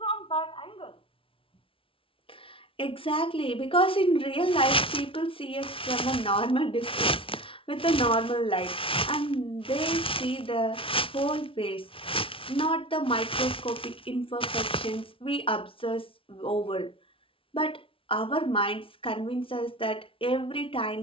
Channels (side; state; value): right; late; 0.26 ms